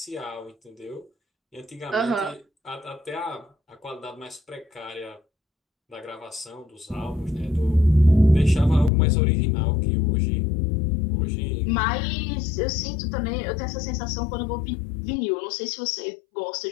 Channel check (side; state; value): right; drops out; at 8.9 s